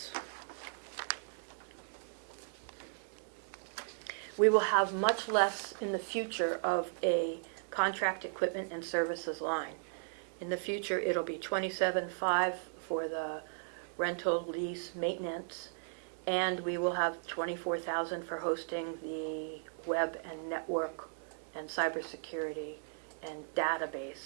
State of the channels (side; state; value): left; silent; digital silence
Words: We will have much less in the future of a contract equipment and services line. In the future, it'll be $27,500 for the rental, lease, maintenance, and we will have $24,000 for hosting the web and network and cybersecurity and